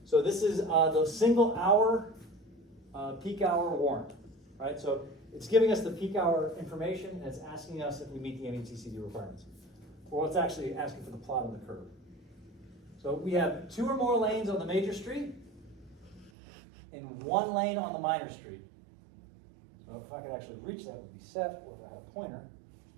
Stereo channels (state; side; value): drops out; left; at 16.3 s